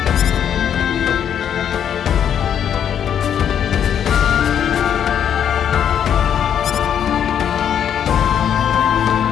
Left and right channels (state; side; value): quieter; right; 9.0 dB